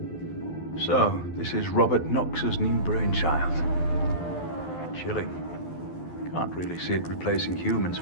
So, this is Robert Knox's new brainchild. Chilling. Can't really see it replacing humans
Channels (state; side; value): late; right; 12 ms